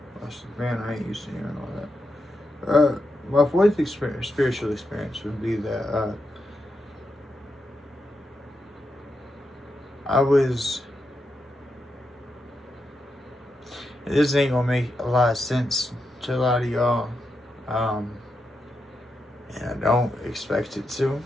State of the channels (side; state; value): both; normal; correlation 0.85